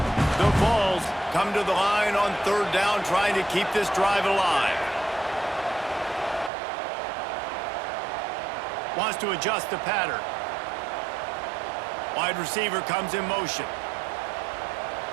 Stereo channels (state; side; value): drops out; left; at 6.5 s